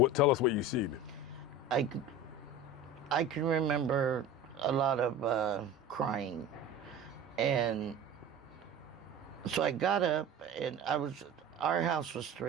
tell us what you seen. I can remember a lot of crying. And so I got up, and our house was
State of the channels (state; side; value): normal; both; correlation 0.35